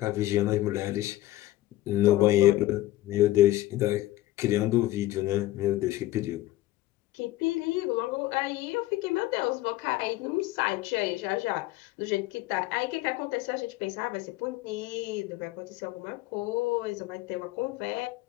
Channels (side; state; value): right; quieter; 16.1 dB